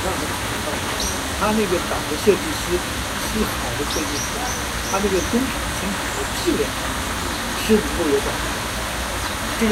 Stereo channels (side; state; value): both; identical; correlation 1.00